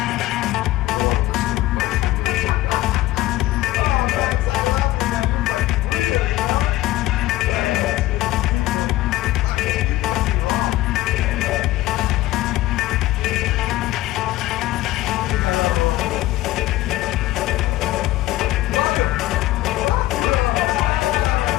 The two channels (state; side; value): quieter; right; 16.4 dB